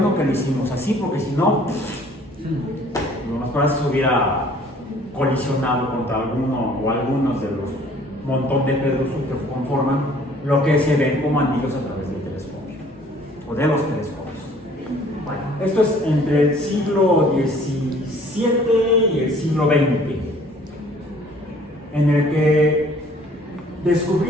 que lo hicimos así, porque si no, lo mejor se hubiera colisionado contra alguno o algunos de los montón de pedrosos que conforman lo que se ven como anillos a través del telescopio o de los telescopios. Bueno, esto es entre el siglo XVII y el siglo XX, en el que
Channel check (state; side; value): normal; both; correlation 0.55